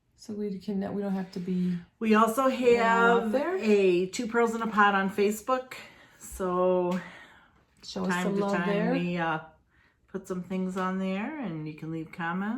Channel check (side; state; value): both; identical; correlation 1.00